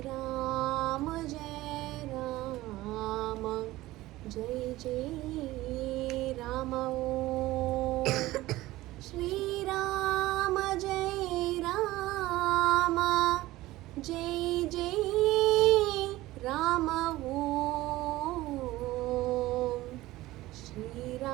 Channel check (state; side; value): quieter; left; 17.5 dB